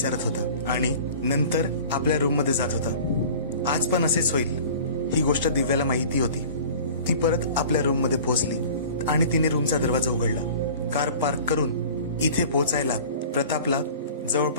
होता आणि नंतर आपल्या रूम मध्ये जात होता. आज पण असेच होईल ही गोष्ट दिव्याला माहिती होती. ती परत आपल्या रूम मध्ये पोहोचली आणि तिने रूमचा दरवाजा उघडला. कार पार्क करून इथे पोहोचायला प्रतापला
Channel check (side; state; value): both; inverted; correlation -0.42